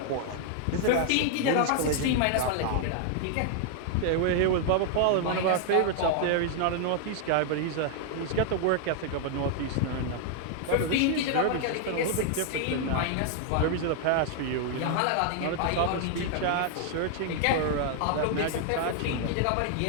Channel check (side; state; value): both; different; correlation 0.00